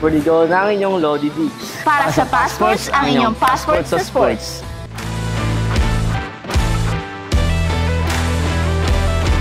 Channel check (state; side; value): identical; both; correlation 1.00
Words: Digo, ng inyong Lodi D. Para sa Passports, ang inyong passport sa sports.